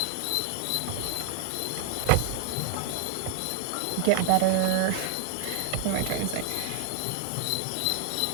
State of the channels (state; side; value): different; both; correlation 0.00